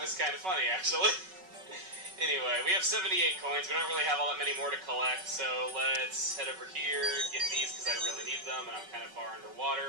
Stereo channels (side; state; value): left; late; 5.3 ms